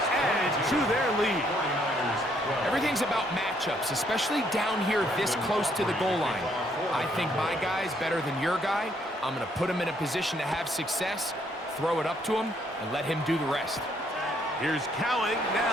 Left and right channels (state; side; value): normal; both; correlation 0.69